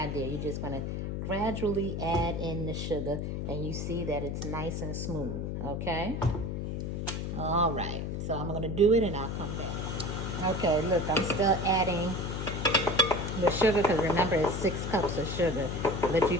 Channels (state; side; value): noise; left; hum, 3 dB below the sound